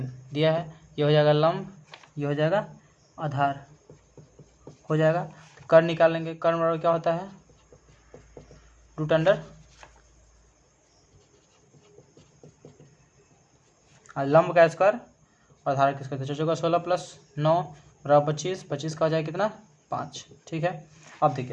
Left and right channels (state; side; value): identical; both; correlation 1.00